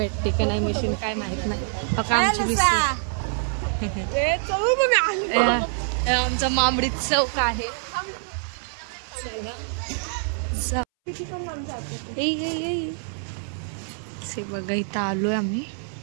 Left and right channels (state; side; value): silent; left; 62 dB below the other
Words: का नाही मशीन काय माहित नाही. आमची आमचा मांबडी चौक आहे. बघा इथं आलोय आम्ही.